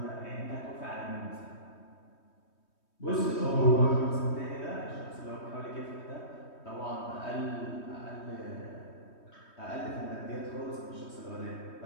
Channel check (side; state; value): right; late; 3.2 ms